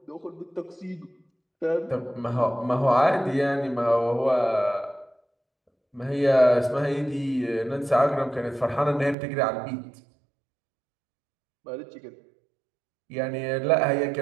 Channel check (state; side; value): drops out; left; at 9.2 s